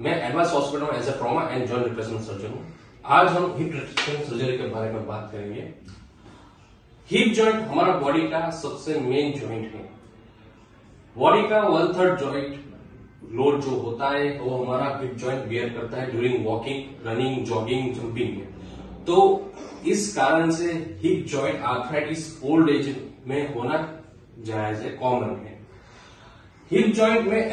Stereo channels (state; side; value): identical; both; correlation 1.00